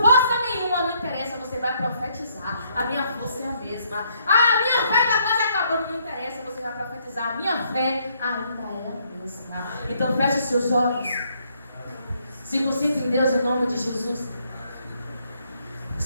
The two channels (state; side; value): inverted; both; correlation -0.70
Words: nenhuma. Não interessa, você vai profetizar: a minha força é a mesma. Ah, a minha fé está quase acabando. Não interessa, você vai profetizar: a minha fé ainda é a mesma. Então feche os seus olhos, se concentre em Deus em nome de Jesus.